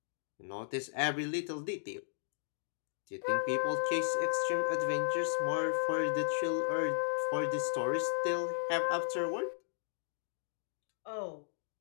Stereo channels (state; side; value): silent; right; digital silence